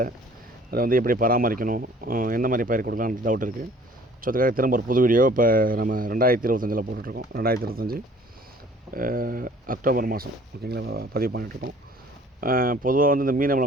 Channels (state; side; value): normal; both; correlation 0.53